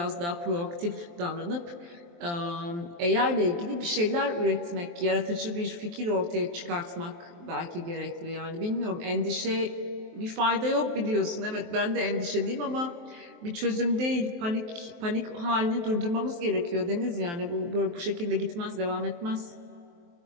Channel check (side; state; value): left; late; 23 ms